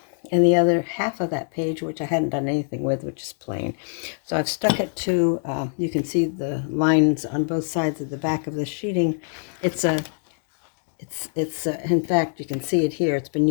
and the other half of that page, which I hadn't done anything with, which is plain. So I've stuck it to, you can see the lines on both sides of the back of the sheeting. In fact, you can see it here. It's been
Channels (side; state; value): right; silent; digital silence